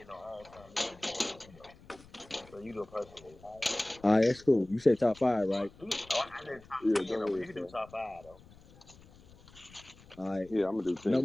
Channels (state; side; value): noise; left; rumble, 23 dB below the sound